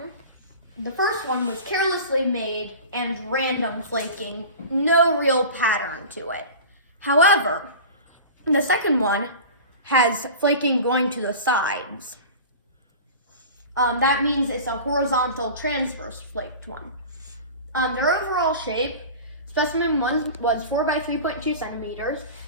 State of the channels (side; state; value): both; inverted; correlation -0.35